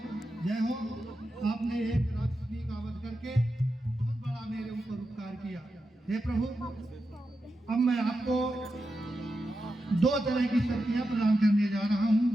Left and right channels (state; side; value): normal; both; correlation 0.89